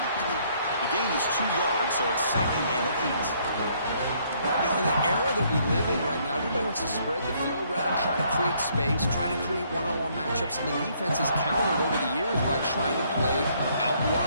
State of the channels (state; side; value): inverted; both; correlation -0.67